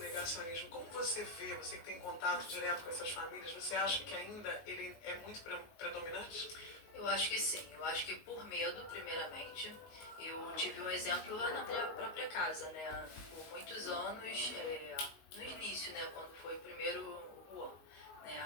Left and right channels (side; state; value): right; late; 19 ms